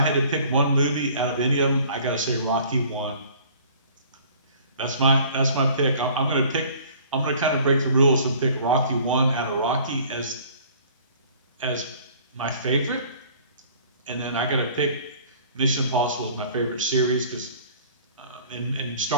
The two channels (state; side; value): inverted; both; correlation -0.51